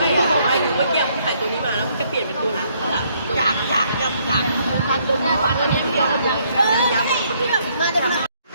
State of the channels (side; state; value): both; inverted; correlation -0.69